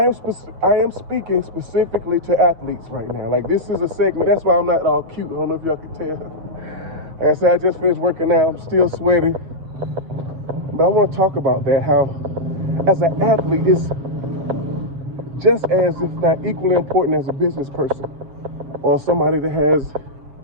am speaking specifically to athletes right now. Like, this is a segment. That's why I'm not all cute. I don't know if y'all can tell. Like I said, I just finished working out. I'm still sweaty. But I want to talk about that, how as an athlete, it's just as, if not equally important as a business person or somebody that has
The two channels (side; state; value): left; late; 7.5 ms